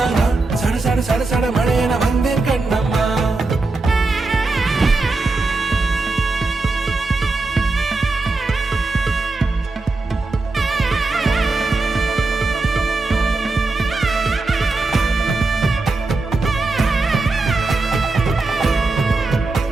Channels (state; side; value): quieter; left; 3.5 dB